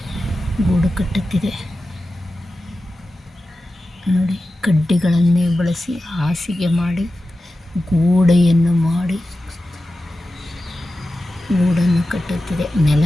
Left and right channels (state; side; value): normal; both; correlation 0.93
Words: ಗೂಡು ಕಟ್ಟುತ್ತಿದೆ. ನೋಡಿ, ಕಡ್ಡಿಗಳನ್ನೇ ಬಳಸಿ ಹಾಸಿಗೆ ಮಾಡಿ ಗೋಡೆಯನ್ನು ಮಾಡಿ ಗೂಡನ್ನು ಕಟ್ಟುತ್ತಿದೆ.